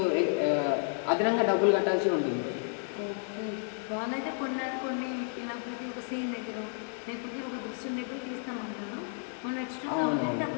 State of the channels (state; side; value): silent; right; 57 dB below the other